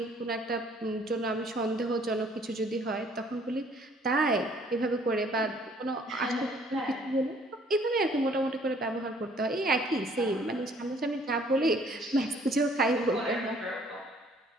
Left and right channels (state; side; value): normal; both; correlation 0.60